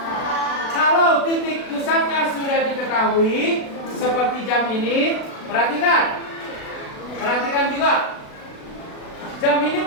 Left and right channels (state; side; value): late; right; 36 ms